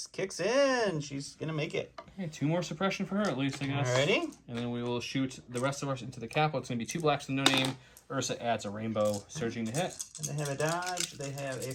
kicks in. She's going to make it. Okay, 2 more suppression for her at least, I guess. Alrighty. And then we will shoot the rest of us into the capo. It's going to be 2 blacks with no name. Ursa adds a rainbow surging to hit. And they have a dodge, they have a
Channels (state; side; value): identical; both; correlation 1.00